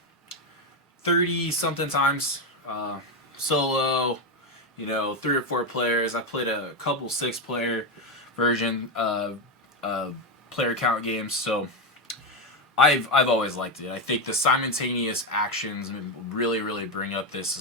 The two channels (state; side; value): normal; both; correlation 0.08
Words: 30 something times solo. 3 or 4 players. I played a couple 6-player version player count games. So I've always liked it. I think the simultaneous actions really bring up this